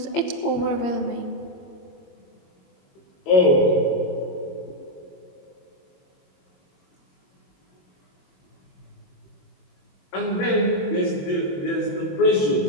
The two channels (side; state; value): right; late; 22 ms